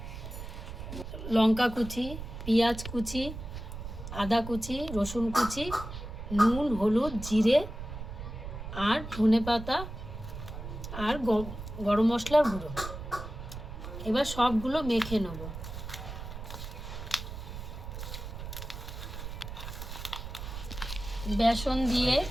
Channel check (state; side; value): noise; right; rumble, 9 dB below the sound